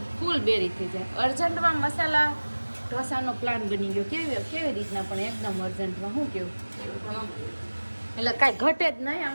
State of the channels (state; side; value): inverted; both; correlation -1.00